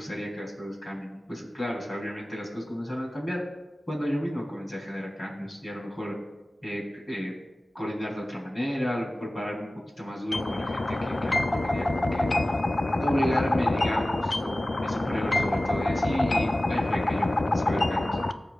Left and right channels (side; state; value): both; normal; correlation 0.97